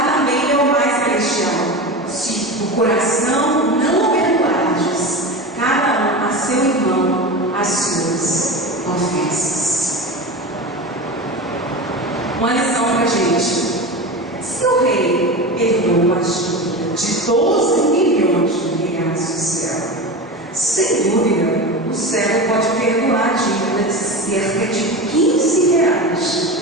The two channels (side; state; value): both; normal; correlation 0.26